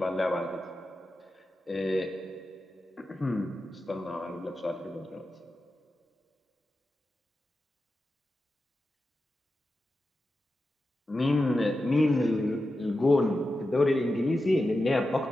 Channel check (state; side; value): normal; both; correlation 0.91